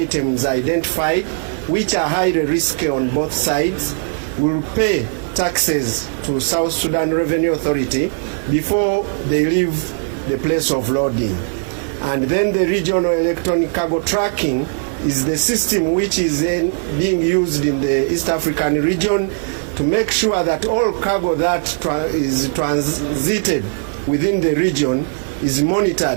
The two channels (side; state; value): left; silent; digital silence